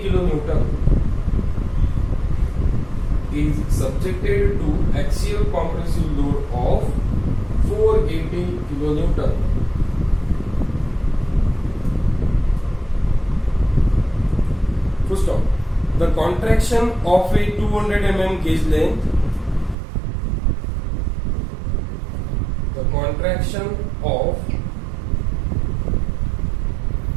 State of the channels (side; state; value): left; drops out; at 19.8 s